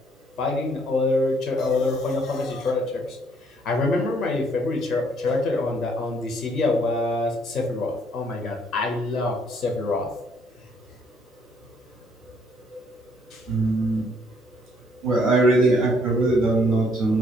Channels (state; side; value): normal; both; correlation 0.66